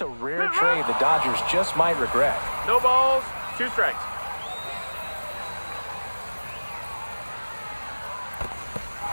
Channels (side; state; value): both; inverted; correlation -1.00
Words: a rare trade the Dodgers just might regret. No balls, 2 strikes.